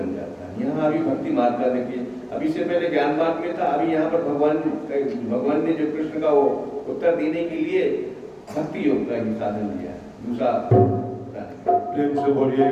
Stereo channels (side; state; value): both; identical; correlation 1.00